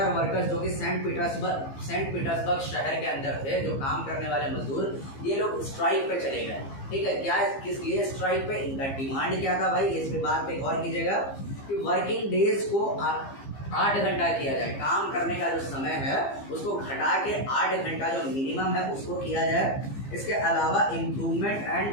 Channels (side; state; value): right; late; 15 ms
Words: वर्कर्स जो कि सेंट पीटर्सबर्ग शहर के अंदर थे, जो काम करने वाले मजदूर, ये लोग स्ट्राइक पे चले गए। ठीक है, क्या किस लिए स्ट्राइक पे? इनका डिमांड क्या था भाई? इस पे बात पे गौर कीजिएगा कि वर्किंग डेज को 8 घंटा किया जाए। काम करने का जो समय है उसको घटा के 8 घंटा जो मिनिमम है उसको किया जाए। इसके अलावा इम्प्रूवमेंट